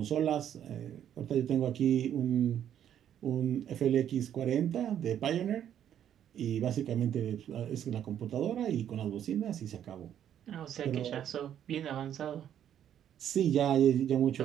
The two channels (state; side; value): quieter; left; 10.0 dB